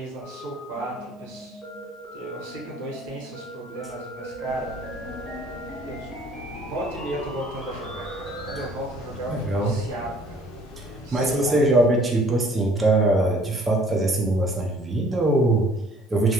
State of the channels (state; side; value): normal; both; correlation 0.56